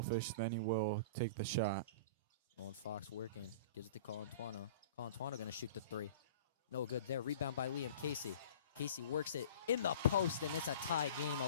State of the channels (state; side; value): inverted; both; correlation -0.42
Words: than he will take the shot. Nolan Fox working. Gives it to Colantuano. Colantuano going to shoot the 3. No good there. Rebound by Liam Casey. Casey works it in the post, and it's a tie game,